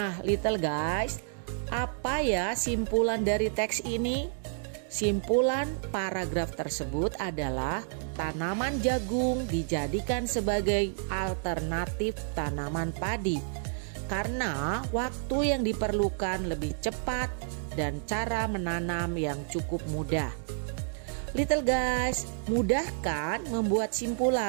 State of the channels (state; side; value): silent; left; digital silence